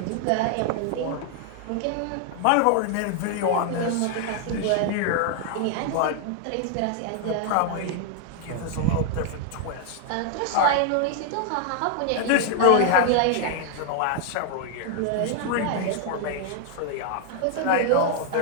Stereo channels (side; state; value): both; different; correlation 0.00